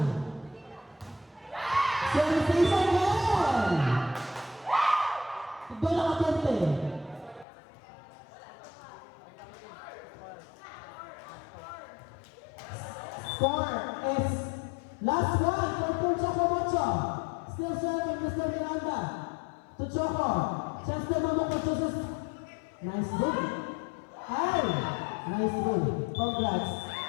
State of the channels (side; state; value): right; drops out; at 7.5 s